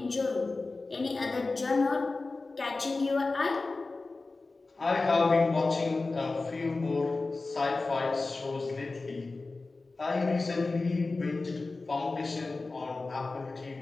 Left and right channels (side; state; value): right; quieter; 3.5 dB